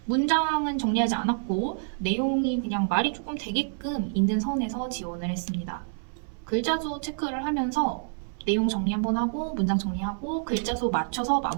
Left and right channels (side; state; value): left; silent; 60 dB below the other